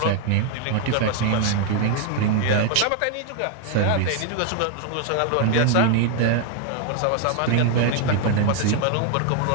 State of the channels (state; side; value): different; both; correlation 0.01